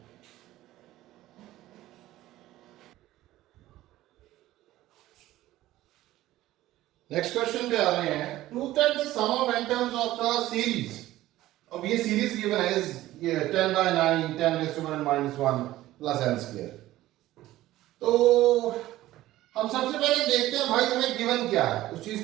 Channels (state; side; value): quieter; left; 15.6 dB